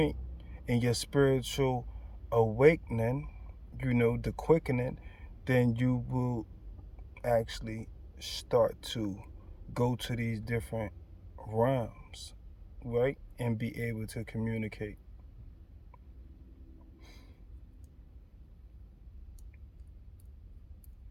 in your spiritual awakening, you know, the quickening, then you will actually start to go to these different realms, right? And be able to communicate.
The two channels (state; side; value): identical; both; correlation 1.00